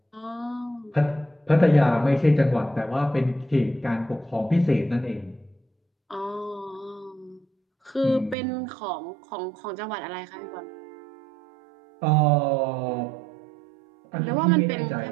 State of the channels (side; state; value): left; drops out; at 8.3 s